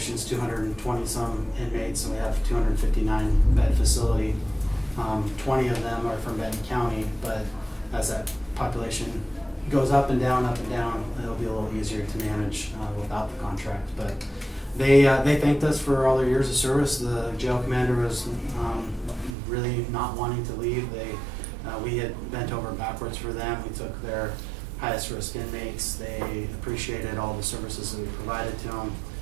is 220 some inmates and we have 259 bed facility, 20 of them are from Benton County, but as that population goes up and down, it'll be a little easier to manage without the contract. But they thanked us for all their years of service. The jail commander was really not wanting to leave. We had bent over backwards for them. We took their highest risk inmates. They appreciated all the services that we provided to them.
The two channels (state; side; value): drops out; left; at 19.3 s